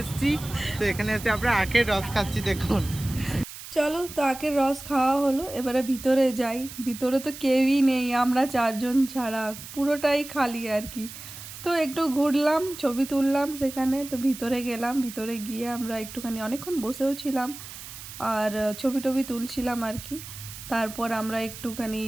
এসেছি। তো এখানে এসে আমরা আখের রস খাচ্ছি দেখুন। চলো তো আখের রস খাওয়া হলো, এবারে ভিতরে যাই। ভিতরে তো কেউই নেই, আমরা চারজন ছাড়া পুরোটাই খালি আর কি। তো একটু ঘুরলাম, ছবি তুললাম সেখানে। তো ভিতরে গেলাম, ভিতরে গিয়ে আমরা একটুখানি অনেকক্ষণ বসেও ছিলাম আর ছবি টবি তুলছিলাম আর কি। তারপর আমরা একটুখানি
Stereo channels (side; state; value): right; noise; hiss, 13 dB below the sound